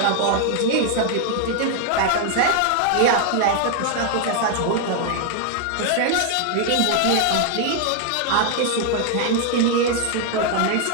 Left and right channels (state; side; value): different; both; correlation 0.00